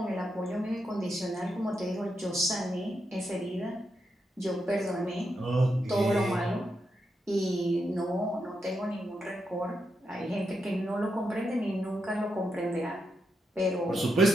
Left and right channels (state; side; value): normal; both; correlation 0.84